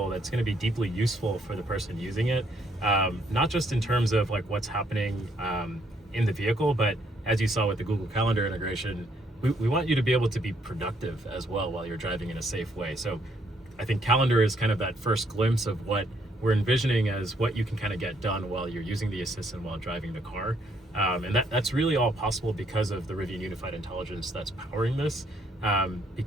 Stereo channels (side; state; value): both; normal; correlation 0.70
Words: that's going to be deeply useful for the person using it, not just in terms of like what's happening in the vehicle, but as you saw with the Google Calendar integration, we want you to be able to be productive as well while you're driving in a safe way. So I think Calendar is kind of that first glimpse of what we're envisioning as what you can kind of get done while you're using the assistant while driving the car. And that's really all possible because of the Rivian Unified Intelligence that's powering this,